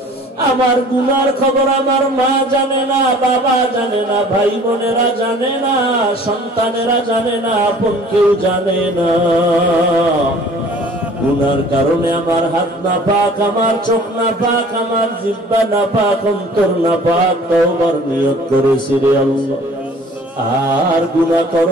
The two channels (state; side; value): normal; both; correlation 0.50